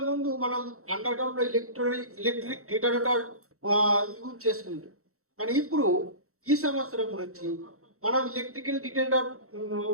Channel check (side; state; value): left; late; 0.64 ms